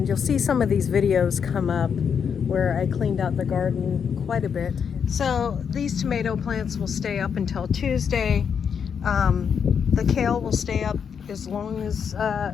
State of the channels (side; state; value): right; quieter; 7.1 dB